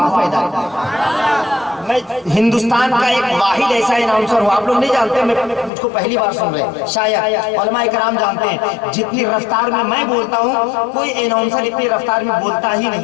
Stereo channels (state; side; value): drops out; right; at 5.7 s